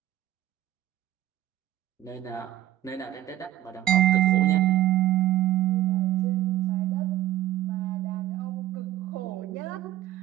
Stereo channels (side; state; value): left; quieter; 13.9 dB